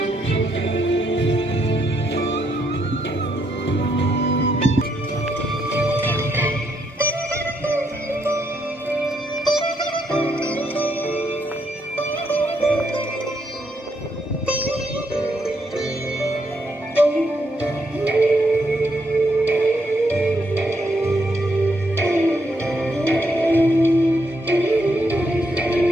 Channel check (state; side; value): normal; both; correlation 0.76